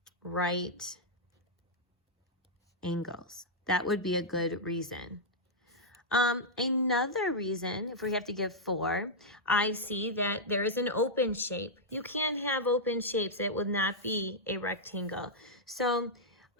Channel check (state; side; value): normal; both; correlation -0.06